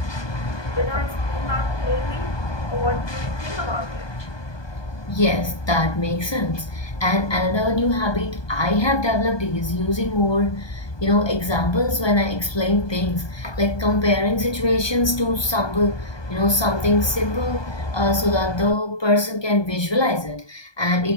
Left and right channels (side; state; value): right; late; 1.2 ms